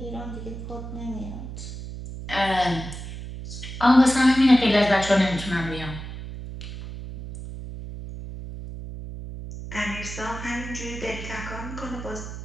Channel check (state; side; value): noise; right; hum, 9 dB below the sound